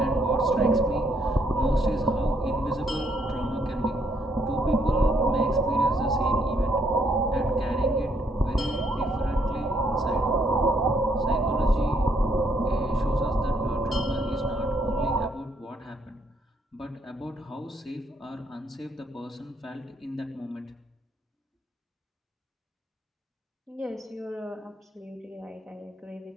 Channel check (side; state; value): both; normal; correlation 0.71